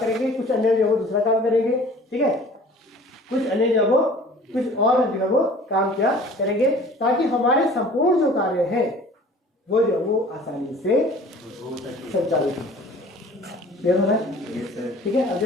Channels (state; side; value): normal; both; correlation 0.47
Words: कुछ अन्य जो है वो दूसरा काम करेंगे, ठीक है, कुछ अन्य जो है वो कुछ और जो है वो काम क्या करेंगे, ताकि हमारे संपूर्ण जो कार्य है वो जो है वो आसानी से संचालित हो। क्लियर हो रहा है? ठीक है। अब